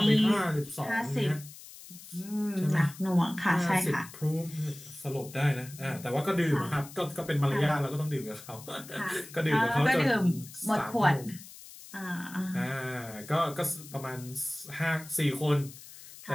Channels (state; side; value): noise; left; hiss, 17 dB below the sound